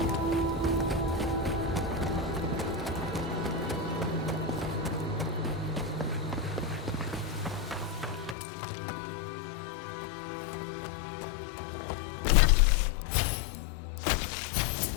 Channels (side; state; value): right; drops out; at 8.3 s